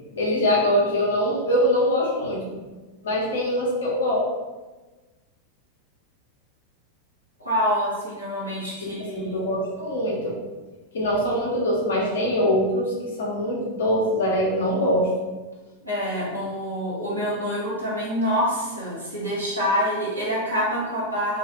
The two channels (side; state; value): both; normal; correlation -0.10